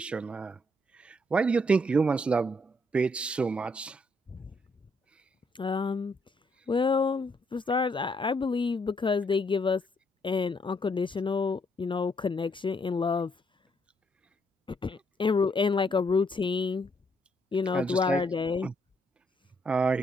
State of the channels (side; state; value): both; normal; correlation 0.72